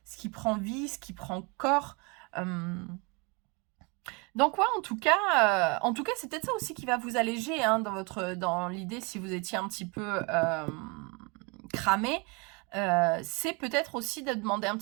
prend vie, ce qui prend corps. Donc ouais, en tout cas, c'est peut-être ça aussi qui va vous alléger dans l'idée si vous étiez un petit peu cramé. C'est peut-être aussi de demander un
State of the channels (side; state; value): left; quieter; 30.4 dB